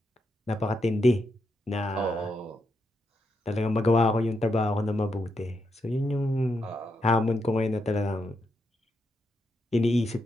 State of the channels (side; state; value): both; normal; correlation 0.82